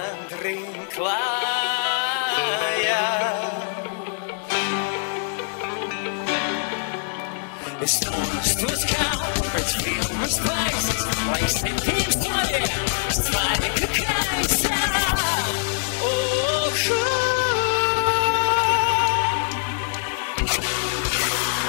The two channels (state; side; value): silent; right; digital silence